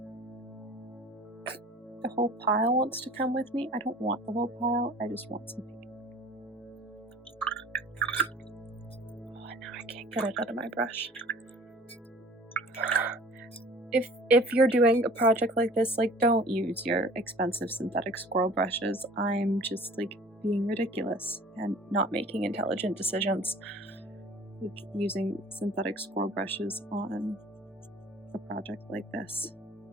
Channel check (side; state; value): both; normal; correlation 0.47